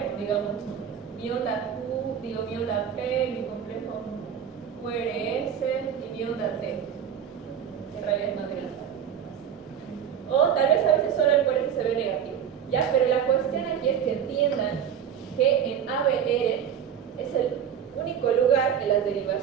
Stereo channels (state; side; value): quieter; left; 8.7 dB